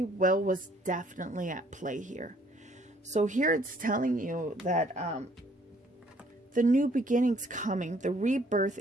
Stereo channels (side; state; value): both; normal; correlation 0.62